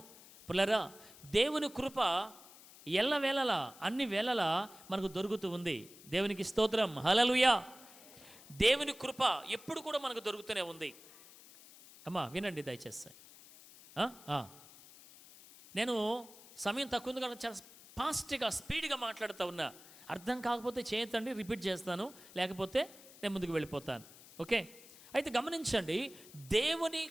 పిల్లరా, దేవుని కృప ఎల్లవేళలా అన్ని వేళలా మనకు దొరుకుతూ ఉంది. దేవునికి స్తోత్రం, హల్లెలూయా. దేవుని కృప ఎప్పుడు కూడా మనకు దొరుకుతూనే ఉంది. అమ్మా వినండి దయచేసి. నేను సమయం తక్కువ ఉంది కాబట్టి చాలా ఫాస్ట్గా స్పీడ్గా మాట్లాడుతూ ఉన్నా. అర్థం కాకపోతే చేయతండి, రిపీట్ చేస్తాను, లేకపోతే నేను ముందుకు వెళ్ళిపోతాను. ఓకే? అయితే గమనించండి, దేవుని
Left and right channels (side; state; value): left; noise; hiss, 20 dB below the sound